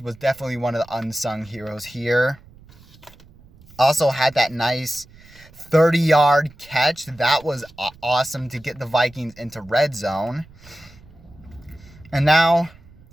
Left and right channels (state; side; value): noise; right; rumble, 24 dB below the sound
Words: was definitely one of the unsung heroes here. Also had that nice 30-yard catch. That was awesome to get the Vikings into red zone. And